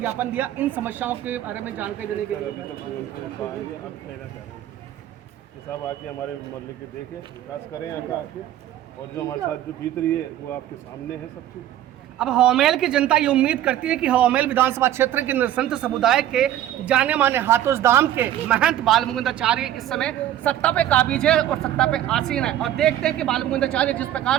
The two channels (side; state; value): left; quieter; 12.2 dB